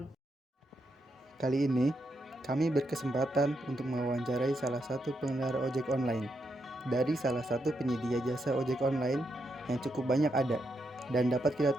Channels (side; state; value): both; normal; correlation 0.81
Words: Kali ini, kami berkesempatan untuk mewawancarai salah satu pengendara ojek online dari salah satu penyedia jasa ojek online yang cukup banyak ada dan dapat kita